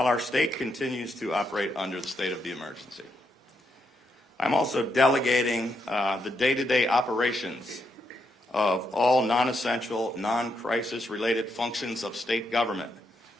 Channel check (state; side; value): normal; both; correlation 0.79